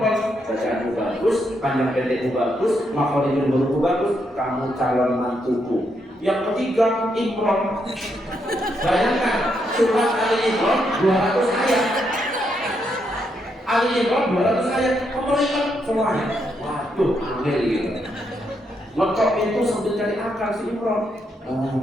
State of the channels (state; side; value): normal; both; correlation 0.79